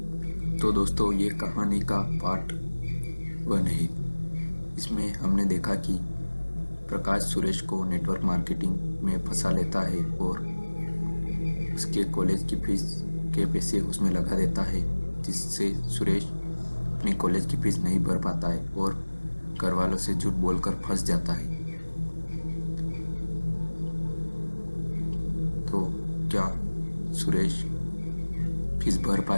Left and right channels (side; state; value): both; inverted; correlation -1.00